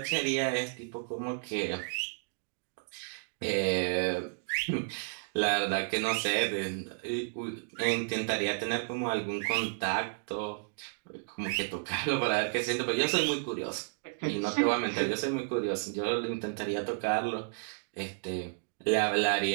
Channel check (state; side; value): silent; left; digital silence